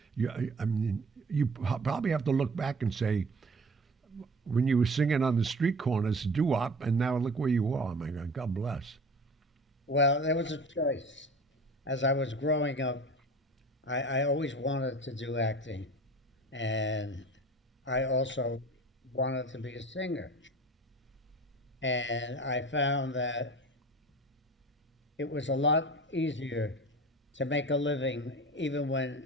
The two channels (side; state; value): both; normal; correlation 0.40